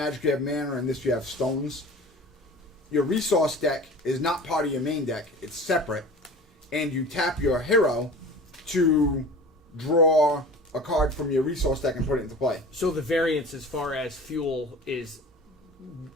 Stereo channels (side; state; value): both; normal; correlation 0.39